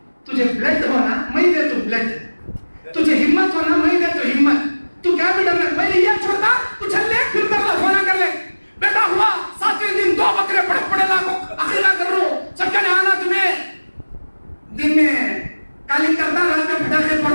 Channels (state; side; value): inverted; both; correlation -1.00